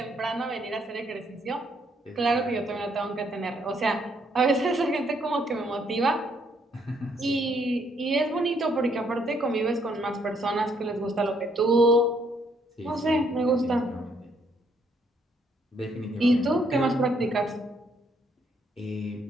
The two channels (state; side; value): normal; both; correlation 0.70